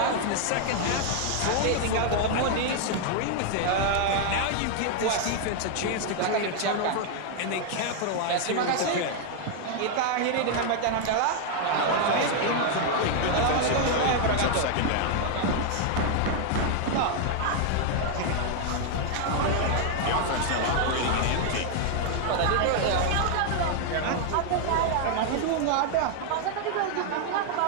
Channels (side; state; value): both; different; correlation 0.00